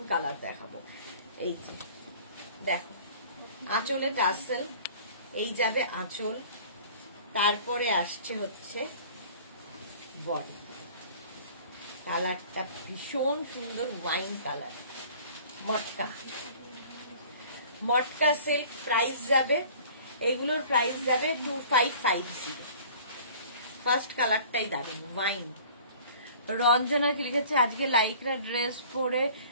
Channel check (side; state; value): both; inverted; correlation -0.48